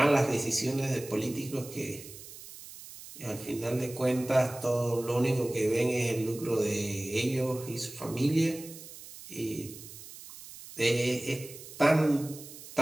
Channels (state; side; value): noise; right; hiss, 15 dB below the sound